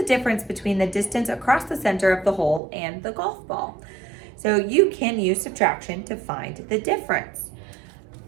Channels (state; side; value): drops out; left; at 2.6 s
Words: difference between the distance across the center of the hole and the golf ball? So you can use subtraction to find the difference.